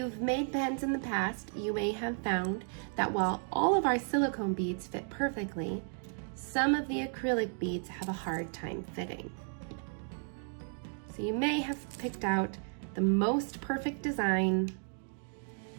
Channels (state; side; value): silent; left; 55 dB below the other